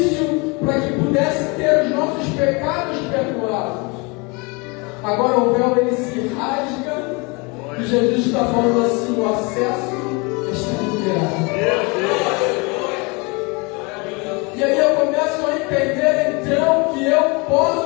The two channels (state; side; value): quieter; right; 28.9 dB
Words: para que pudesse ter os nossos pecados perdoados. Agora o véu ele se rasga e Jesus está falando assim: o acesso está liberado. E aí eu começo a entender então que eu